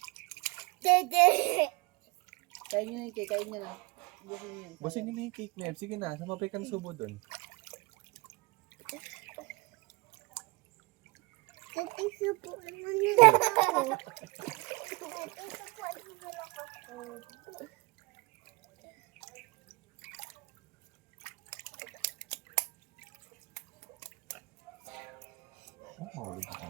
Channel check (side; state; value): left; quieter; 24.3 dB